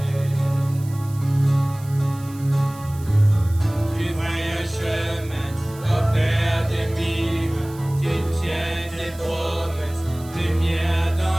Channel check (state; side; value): noise; right; hiss, 21 dB below the sound